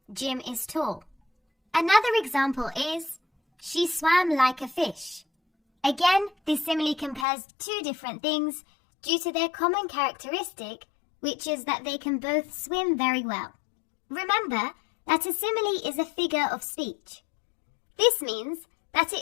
Jim is tall. Another example is, she swam like a fish. Again, this simile compares two different things due to their common characteristic, which is that they can both swim very well. Remember that a simile is a figure of speech. This means that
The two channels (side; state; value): right; drops out; at 7.2 s